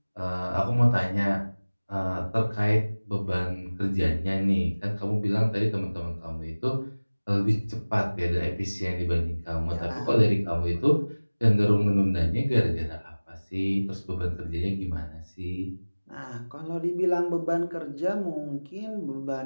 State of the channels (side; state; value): both; inverted; correlation -1.00